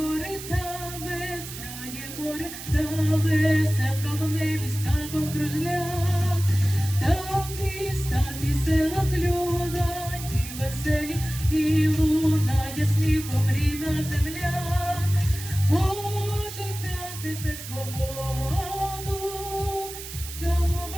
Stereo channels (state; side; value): noise; right; hiss, 11 dB below the sound